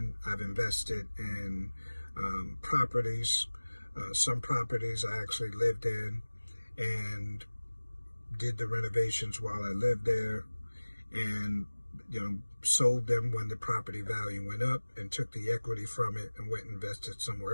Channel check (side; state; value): both; inverted; correlation -1.00